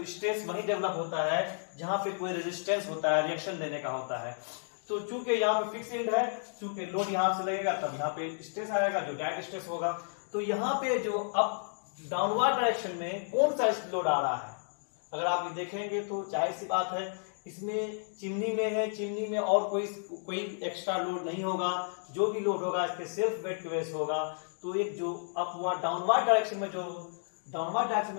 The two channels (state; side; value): silent; right; digital silence